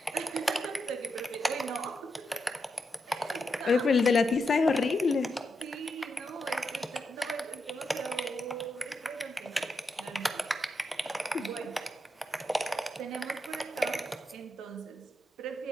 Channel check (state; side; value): normal; both; correlation 0.85